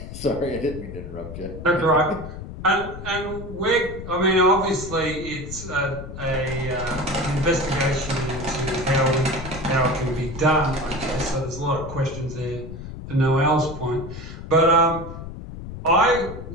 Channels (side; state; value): left; noise; rumble, 11 dB below the sound